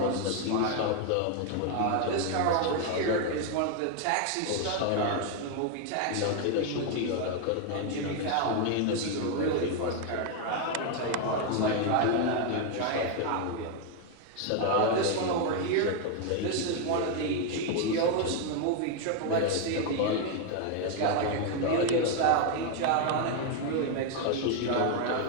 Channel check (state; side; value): different; both; correlation 0.01